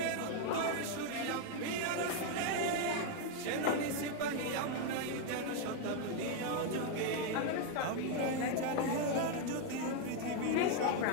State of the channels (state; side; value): different; both; correlation 0.01